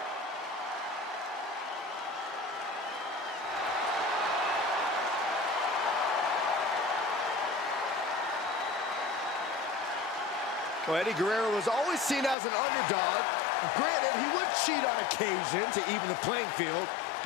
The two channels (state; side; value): drops out; right; at 12.4 s